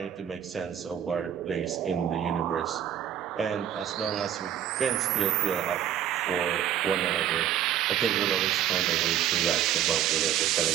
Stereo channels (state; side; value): quieter; left; 10.4 dB